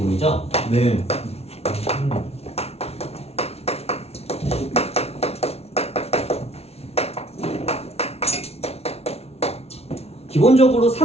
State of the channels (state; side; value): late; right; 0.30 ms